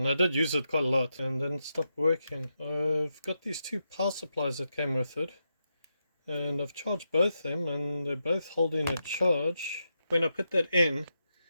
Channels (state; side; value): inverted; both; correlation -0.86